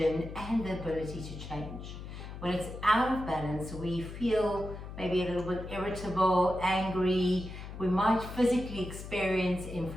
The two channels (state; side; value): noise; left; hum, 10 dB below the sound